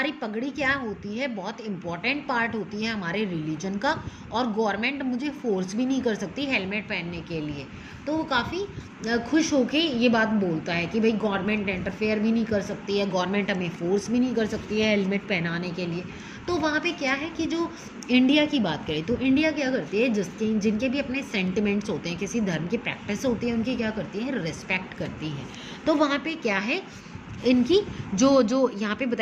पगड़ी क्या होती है, बहुत इंपॉर्टेंट पार्ट होती है हमारे रिलीजन का, और गवर्नमेंट मुझे फोर्स भी नहीं कर सकती हेलमेट पहनने के लिए। तो वो काफ़ी खुश होके ये बात बोलता है कि भाई गवर्नमेंट इंटरफेयर भी नहीं कर सकती है, गवर्नमेंट हमें फोर्स भी नहीं कर सकती है हेलमेट पहनाने के लिए। तो वहाँ पे क्या है कि जो इंडिया की बात करें तो इंडिया क्या करती है, जिनके भी अपने सेंटिमेंट्स होते हैं, किसी धर्म की प्रैक्टिस होती है, उनकी क्या करती है, रिस्पेक्ट करती है। तो वहाँ पे क्या है, इनकी जो यहाँ पे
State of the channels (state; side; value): identical; both; correlation 1.00